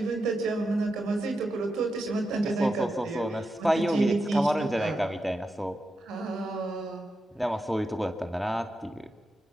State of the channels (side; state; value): both; normal; correlation 0.88